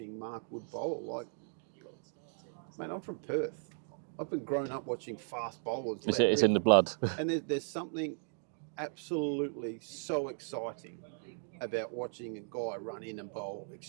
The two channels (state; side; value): silent; left; 54 dB below the other